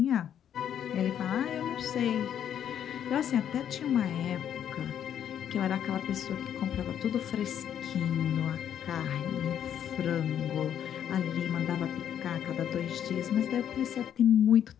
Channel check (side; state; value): right; quieter; 9.6 dB